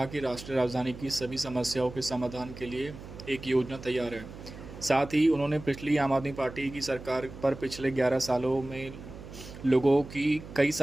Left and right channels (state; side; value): noise; right; hum, 14 dB below the sound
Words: कि राष्ट्रीय राजधानी की सभी समस्याओं के समाधान के लिए एक योजना तैयार है। साथ ही उन्होंने पिछली आम आदमी पार्टी की सरकार पर पिछले 11 सालों में लोगों की कई